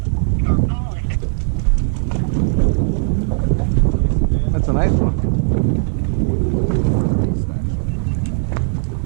That's a nice one.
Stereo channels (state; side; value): silent; left; 67 dB below the other